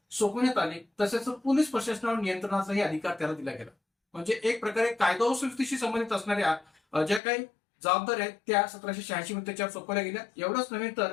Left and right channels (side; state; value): right; drops out; at 7.2 s